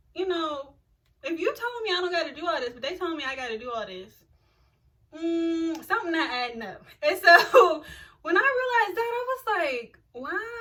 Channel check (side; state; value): both; identical; correlation 1.00